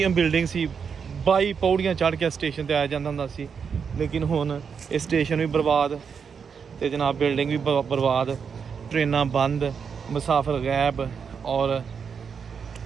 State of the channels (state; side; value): quieter; left; 6.4 dB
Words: ਬਿਲਡਿੰਗ ਸੀ, 22 ਪੌੜੀਆਂ ਚੜ੍ਹ ਕੇ ਸਟੇਸ਼ਨ ਤੇ ਆਇਆ ਜਾਂਦਾ ਹੁੰਦਾ ਸੀ, ਲੇਕਿਨ ਹੁਣ ਇਹ ਸਟੇਸ਼ਨ ਵੀ ਬਰਬਾਦ ਤੇ ਜਨਾਬ ਬਿਲਡਿੰਗ ਵੀ ਬਰਬਾਦ, ਟ੍ਰੇਨਾਂ ਬੰਦ, ਮੁਸਾਫਰ ਗਾਇਬ ਔਰ